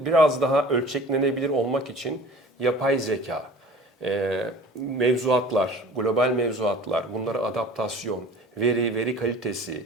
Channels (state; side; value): normal; both; correlation 0.44